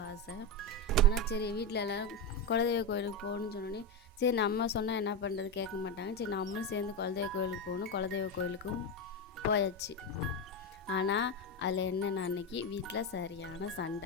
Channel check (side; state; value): both; normal; correlation 0.13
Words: ஆசை. ஆனால் சரி வீட்டில் எல்லோரும் குலதெய்வ கோயிலுக்கு போகணுன்னு சொன்னோடனே சரி நம்ம சொன்னால் என்ன பண்ணுறது கேட்க மாட்டாங்க. சரி நம்மளும் சேர்ந்து குலதெய்வ கோயிலுக்கு போகணும். குலதெய்வ கோயிலுக்கும் போயாச்சு. ஆனால் அதில் என்னென்ன அன்றைக்கி வீட்டில் சரியான